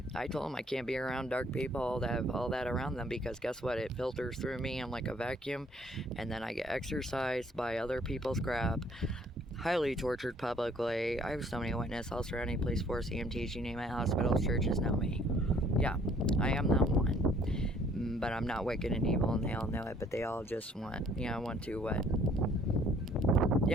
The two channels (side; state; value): both; normal; correlation 0.60